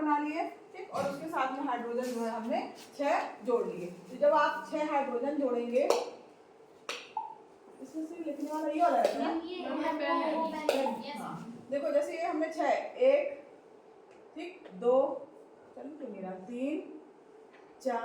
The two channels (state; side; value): identical; both; correlation 1.00